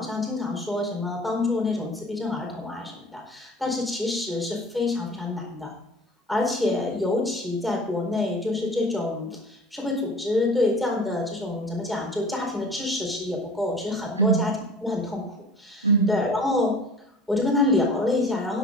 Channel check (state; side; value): normal; both; correlation 0.45